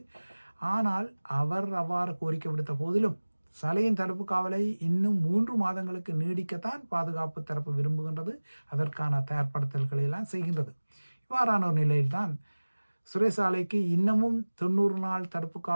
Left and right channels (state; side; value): inverted; both; correlation -1.00